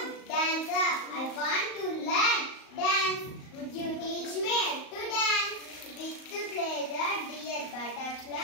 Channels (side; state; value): right; late; 38 ms